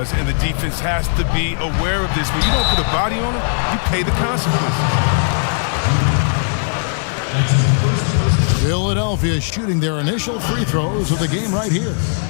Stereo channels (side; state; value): right; silent; digital silence